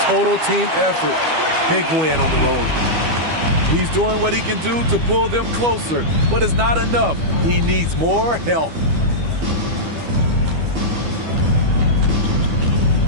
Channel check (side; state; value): left; late; 12 ms